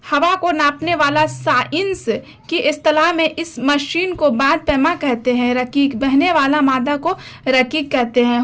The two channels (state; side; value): identical; both; correlation 1.00